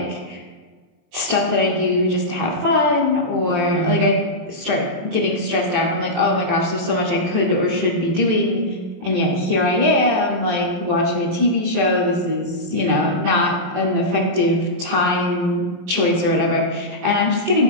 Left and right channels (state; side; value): late; left; 23 ms